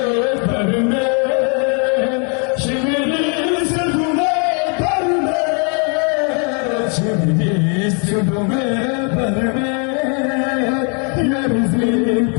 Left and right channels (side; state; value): right; quieter; 38.1 dB